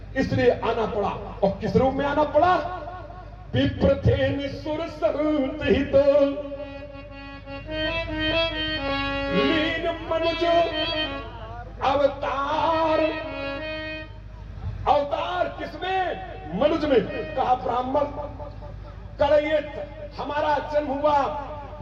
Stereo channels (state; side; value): identical; both; correlation 1.00